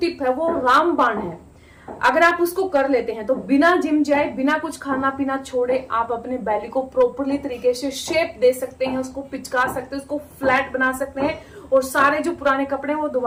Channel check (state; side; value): identical; both; correlation 1.00